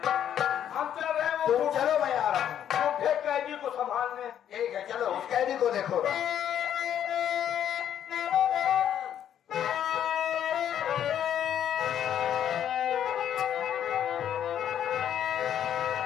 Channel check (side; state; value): right; quieter; 9.9 dB